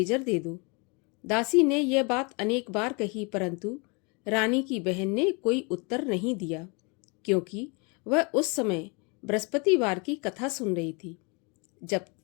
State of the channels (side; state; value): right; quieter; 31.5 dB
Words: दे दो। दासी ने यह बात अनेक बार कही, परंतु रानी की बहन ने कोई उत्तर नहीं दिया, क्योंकि वह उस समय बृहस्पतिवार की कथा सुन रही थी। जब